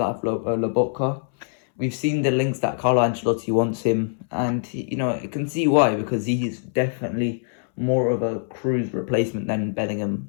Lobotka. We've seen the links that Carlo Ancelotti wants him, and you can see why, because he's definitely more of a Cruz replacement than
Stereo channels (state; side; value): silent; right; 63 dB below the other